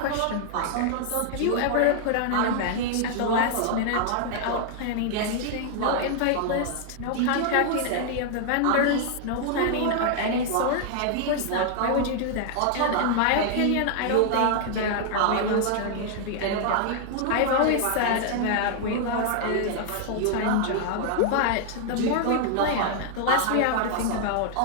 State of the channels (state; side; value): different; both; correlation 0.00